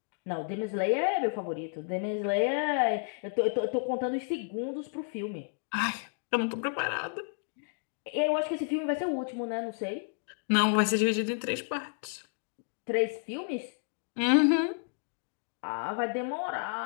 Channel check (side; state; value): right; silent; digital silence